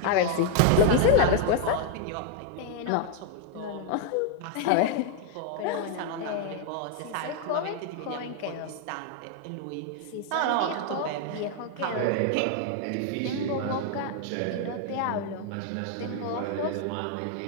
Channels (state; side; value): different; both; correlation 0.00